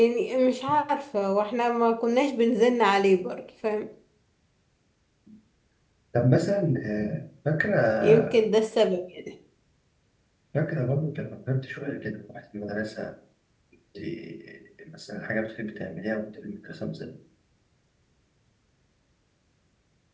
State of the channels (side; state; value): both; identical; correlation 1.00